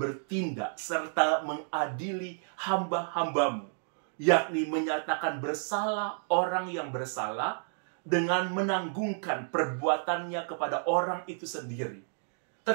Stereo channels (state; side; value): silent; left; digital silence